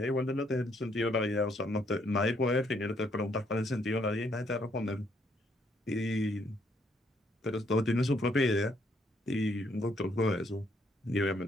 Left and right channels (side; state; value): both; normal; correlation 0.71